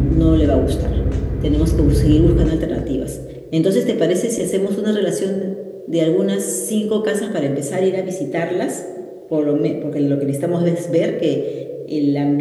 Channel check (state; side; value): identical; both; correlation 1.00